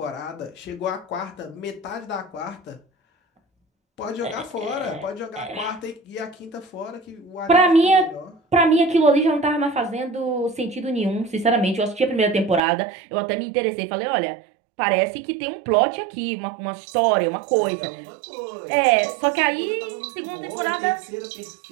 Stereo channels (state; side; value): drops out; left; at 12.6 s